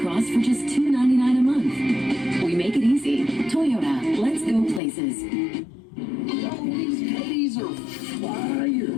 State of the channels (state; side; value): drops out; right; at 4.8 s